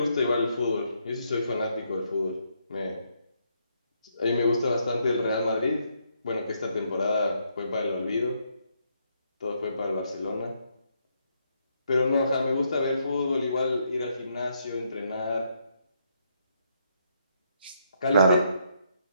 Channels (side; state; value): both; inverted; correlation -0.75